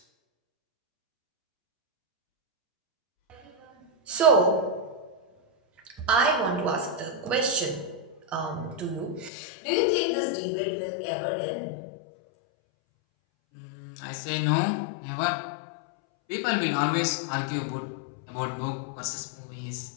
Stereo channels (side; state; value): right; drops out; at 9.3 s